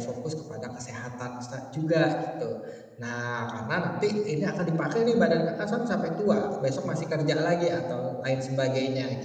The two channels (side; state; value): both; identical; correlation 1.00